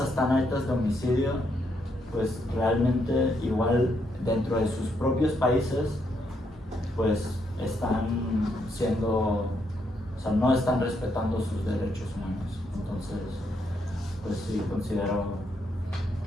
tan altas de homicidio, pues realmente igual dentro de sus propios países pues están no están respetando sus derechos humanos. Entonces pues sí considero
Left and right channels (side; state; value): both; normal; correlation 0.76